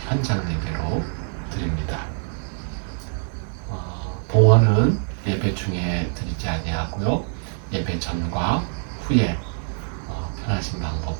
현장 예배로 드립니다. 봉헌은 예배 중에 드리지 아니하고요. 예배 전과 후에 편하신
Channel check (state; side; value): silent; left; 62 dB below the other